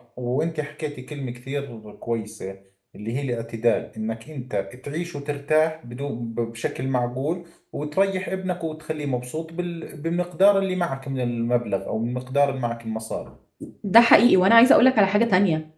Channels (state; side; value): identical; both; correlation 1.00